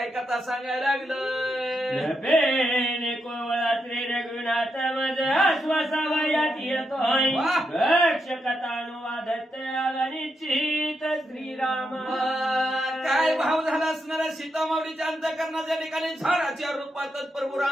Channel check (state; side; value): normal; both; correlation 0.83